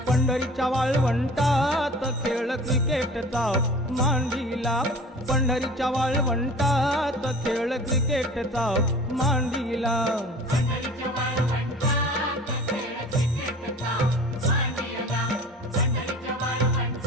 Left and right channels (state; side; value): normal; both; correlation 0.42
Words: पंढरीच्या वाळवंटात खेळ क्रिकेटचा मांडीला, पंढरीच्या वाळवंटात खेळ क्रिकेटचा मांडीला.